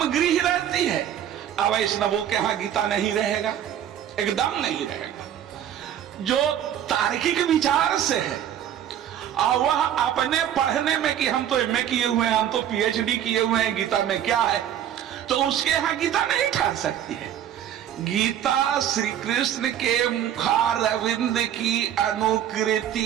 गृह रहती है। अब वैष्णवों के यहां गीता नहीं रहेगा, एकदम नहीं रहेगा। जो तार्किक विचार से है और वह अपने पढ़ने में कि हम तो एमए किए हुए हैं, हम तो पीएचडी किए हुए हैं, गीता में क्या है, तो उसके यहां गीता नहीं ठहर सकती है। गीता श्री कृष्ण के मुखारविंद की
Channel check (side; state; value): left; quieter; 10.4 dB